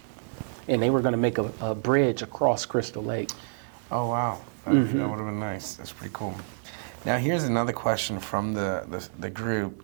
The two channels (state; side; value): silent; left; 59 dB below the other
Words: and they were going to make a bridge across Crystal Lake. Oh wow, that would have been nice. That's pretty cool. Now here's another question from the group,